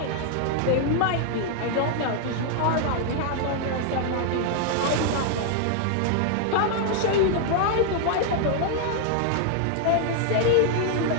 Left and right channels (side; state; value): both; different; correlation 0.00